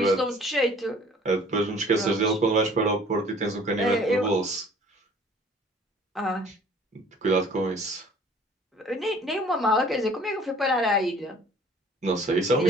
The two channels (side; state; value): both; normal; correlation 0.53